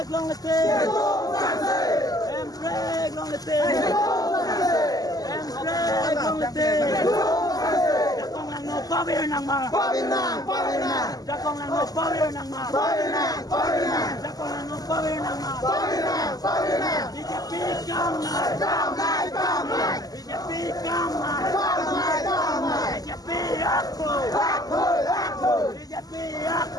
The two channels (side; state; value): right; late; 0.18 ms